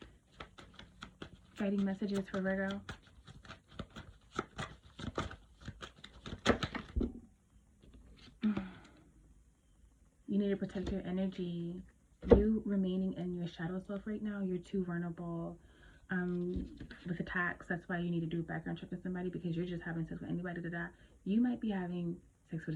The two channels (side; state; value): both; identical; correlation 1.00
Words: Guiding messages for Virgo. You need to protect your energy. You remaining in your shadow self right now, you're too vulnerable with attacks. That's why you need to do a background check with somebody, because you're just having sex with anybody that you might be having sex